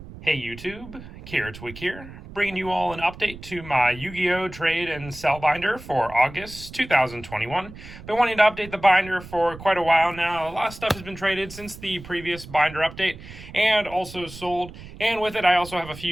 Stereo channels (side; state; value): right; noise; rumble, 15 dB below the sound